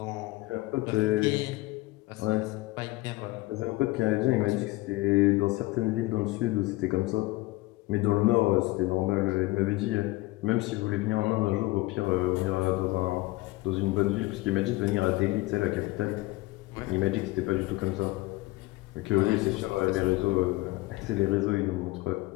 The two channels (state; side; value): quieter; right; 20.2 dB